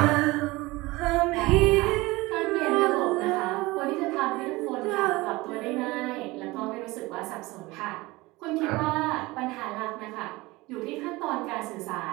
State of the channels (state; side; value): quieter; left; 21.4 dB